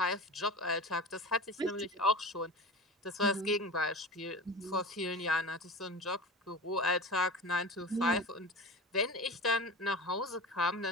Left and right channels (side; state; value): both; normal; correlation 0.32